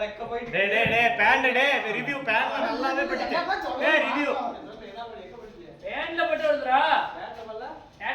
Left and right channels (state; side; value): identical; both; correlation 1.00